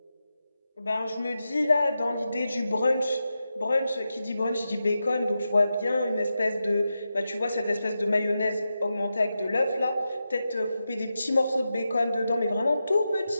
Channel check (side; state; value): both; inverted; correlation -0.89